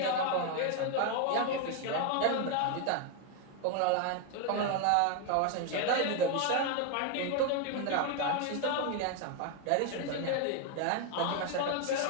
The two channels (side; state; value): both; different; correlation 0.01